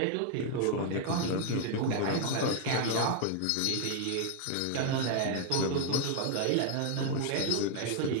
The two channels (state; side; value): different; both; correlation 0.01